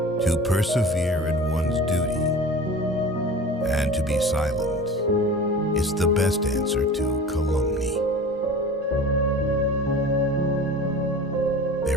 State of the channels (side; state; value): both; normal; correlation 0.37